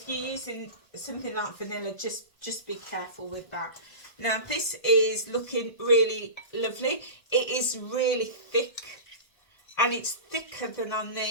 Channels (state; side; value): late; right; 1.7 ms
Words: you're using something like vanilla, just just be careful with that. Now this is looking really lovely. It is really thick, and it's thicker than I